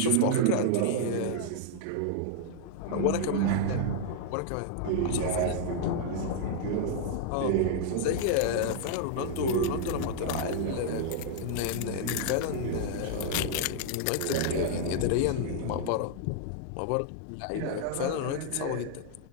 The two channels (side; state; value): both; different; correlation -0.01